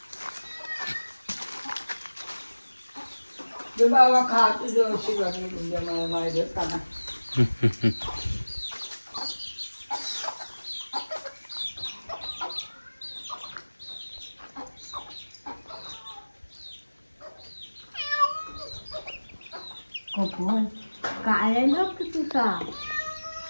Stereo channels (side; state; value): both; inverted; correlation -1.00